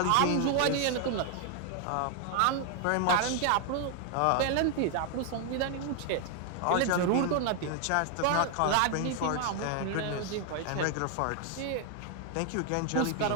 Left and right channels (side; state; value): both; different; correlation 0.00